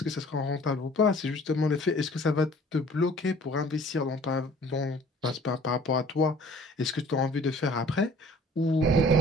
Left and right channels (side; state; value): both; normal; correlation 0.52